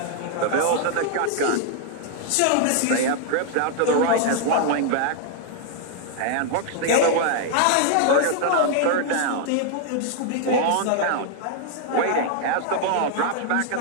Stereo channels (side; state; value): both; different; correlation 0.00